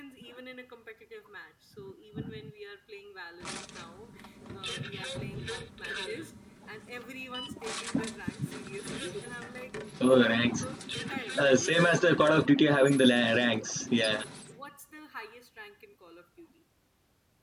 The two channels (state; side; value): identical; both; correlation 1.00